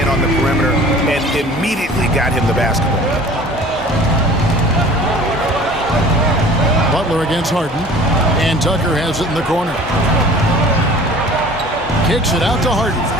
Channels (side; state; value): both; normal; correlation 0.46